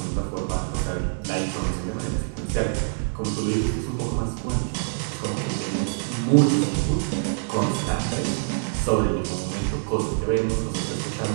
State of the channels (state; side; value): silent; left; digital silence